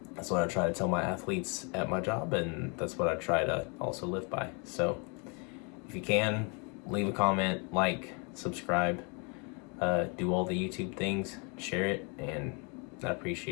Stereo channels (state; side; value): quieter; right; 34.0 dB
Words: that's what I try to tell my athletes at my job, and that's what I try to also live by. So if you can, leave a comment, subscribe, do all the YouTube things, share it, and I